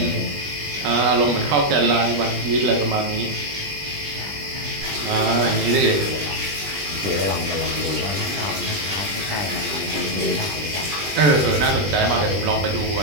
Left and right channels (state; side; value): late; left; 20 ms